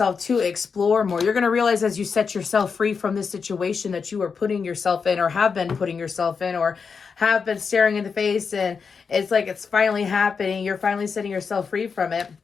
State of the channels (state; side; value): quieter; right; 5.6 dB